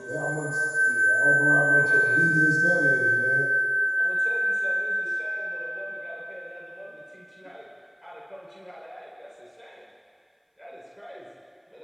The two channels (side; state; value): both; identical; correlation 1.00